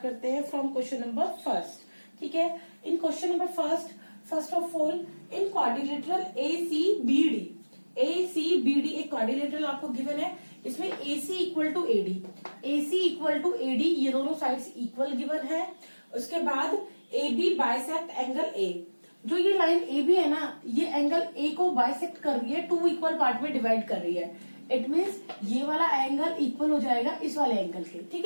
करते हैं फ्रॉम क्वेश्चन नंबर फर्स्ट. ठीक है. In question number first of all in quadrilateral ACBD एक क्वाड्रिलेटरल आपको गिवन है. इसमें AC इक्वल टू AD ये दोनों साइड्स इक्वल गिवन है. उसके बाद AB बाइसेक्ट एंगल A. जो ये लाइन ए बी है ना, ये एंगल ए को बाइसेक्ट कर रही है, टू इक्वल पार्ट में डिवाइड कर रही है. इट मीन्स ये वाला एंगल इक्वल हो जाएगा इस वाले एंगल के. ठीक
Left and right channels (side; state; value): both; inverted; correlation -1.00